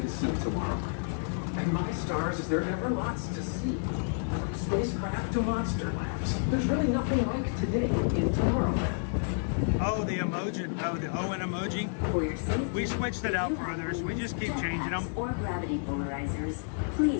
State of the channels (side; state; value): right; silent; digital silence